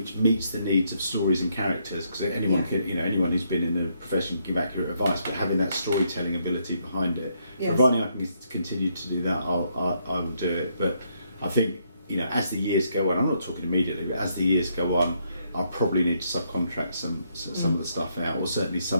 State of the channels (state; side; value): inverted; both; correlation -0.75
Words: meets the needs of stories and characters, because anyone who's been in the profession can give accurate advice, but having that storytelling ability behind it, providing I can continue to do that, I will do it. But I think as the years go on, I'm not talking immediately, but as the years go on, I'll probably need to subcontract some of the stuff out, or certainly